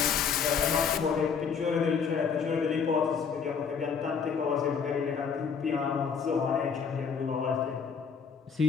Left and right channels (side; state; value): right; quieter; 6.2 dB